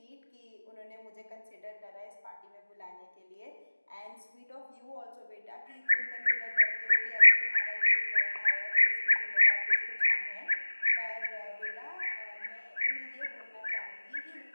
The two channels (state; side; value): inverted; both; correlation -1.00